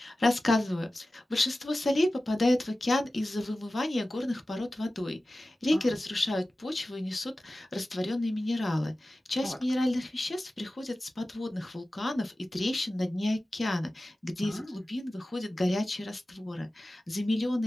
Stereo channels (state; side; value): normal; both; correlation 0.95